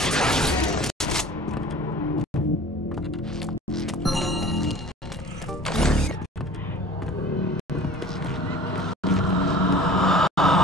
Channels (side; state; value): both; normal; correlation 0.43